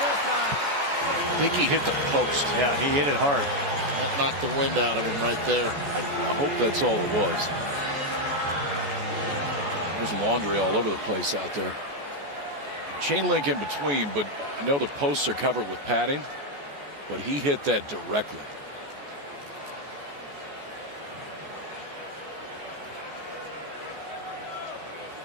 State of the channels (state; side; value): late; left; 14 ms